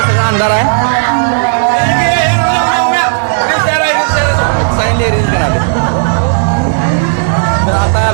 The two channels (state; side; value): silent; left; digital silence